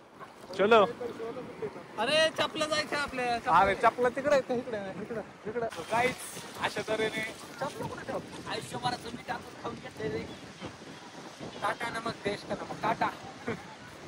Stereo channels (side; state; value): both; identical; correlation 1.00